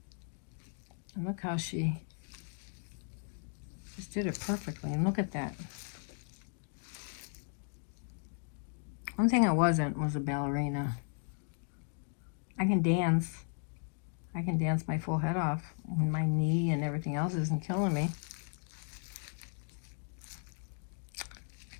And look how she just did it perfectly. And look at that. One thing I wasn't was a ballerina. I can dance. I can dance my full head off when my knee and everything else isn't killing me.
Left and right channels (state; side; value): silent; right; 54 dB below the other